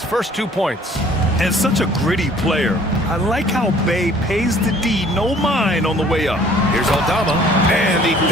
first 2 points. And such a gritty player. I like how Bay pays the D no mind on the way up. Here's Aldama, and he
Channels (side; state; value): both; normal; correlation 0.55